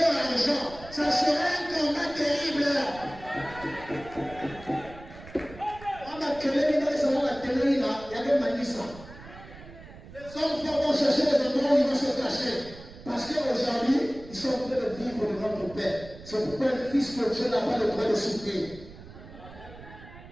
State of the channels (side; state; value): right; noise; rumble, 17 dB below the sound